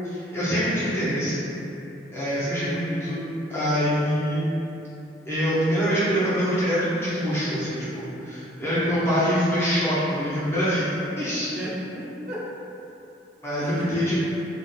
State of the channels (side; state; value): both; normal; correlation 0.56